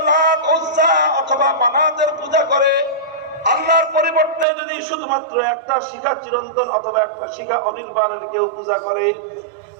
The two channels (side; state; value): left; drops out; at 4.5 s